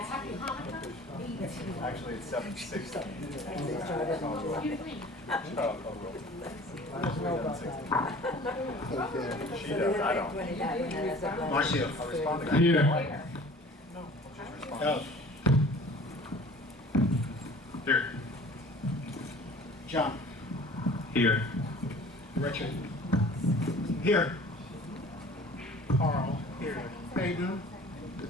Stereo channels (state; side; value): normal; both; correlation 0.46